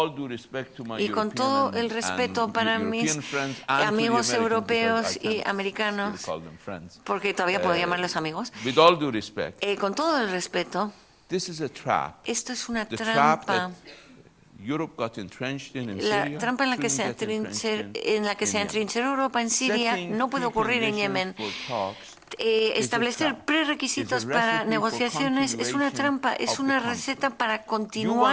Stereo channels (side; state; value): both; identical; correlation 1.00